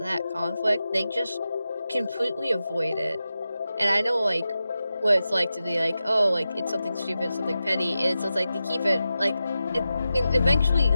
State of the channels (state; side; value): inverted; both; correlation -0.92